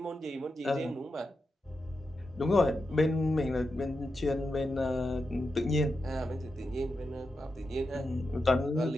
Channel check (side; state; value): both; normal; correlation 0.88